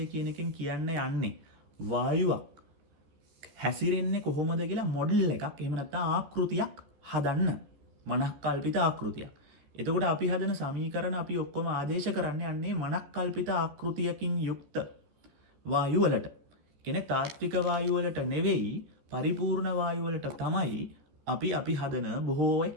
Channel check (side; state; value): left; late; 14 ms